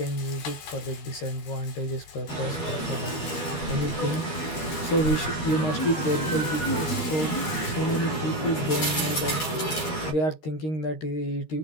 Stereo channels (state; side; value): late; right; 12 ms